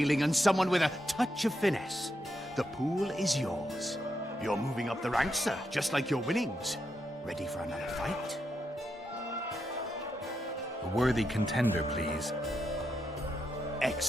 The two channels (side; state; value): both; normal; correlation 0.83